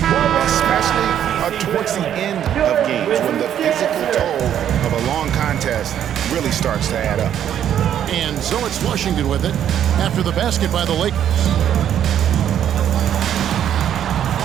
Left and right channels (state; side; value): quieter; left; 10.0 dB